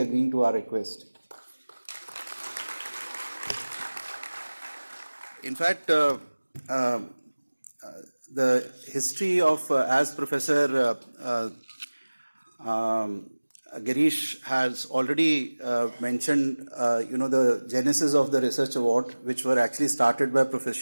to our request. In fact, the history of, as Professor Girish has already mentioned, the genesis of the research award, which were actually started by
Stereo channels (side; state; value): both; inverted; correlation -1.00